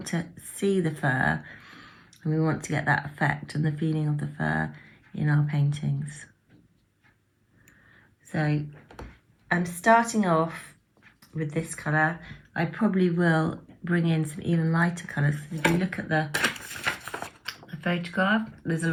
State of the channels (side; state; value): both; identical; correlation 1.00